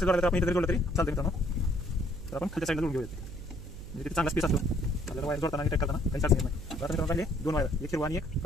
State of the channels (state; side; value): noise; right; hum, 12 dB below the sound